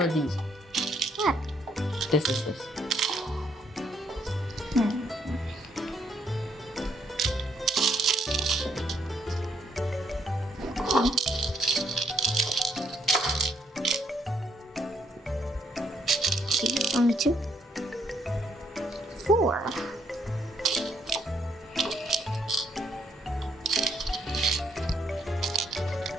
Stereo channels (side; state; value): both; normal; correlation 0.72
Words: of these. What? This is this. 4.